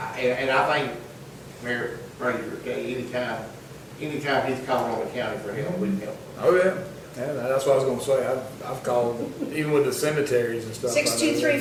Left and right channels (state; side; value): identical; both; correlation 1.00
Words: And I think, Mayor Fraser, okay, anytime anytime he's calling on the county for help, we can help. Oh, yeah. Yeah, that's what I was gonna say. I've called, even with the cemeteries and stuff.